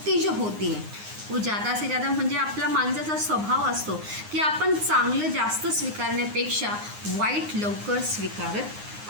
जो होती है वो ज़्यादा से ज़्यादा म्हणजे आपला माणसाचा स्वभाव असतो की आपण चांगलं जास्त स्वीकारण्यापेक्षा वाईट लवकर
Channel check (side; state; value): left; late; 9.6 ms